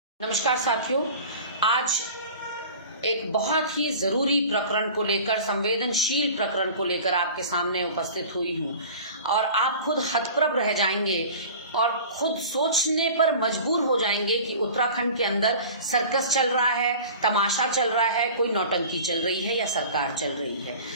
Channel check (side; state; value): both; inverted; correlation -0.40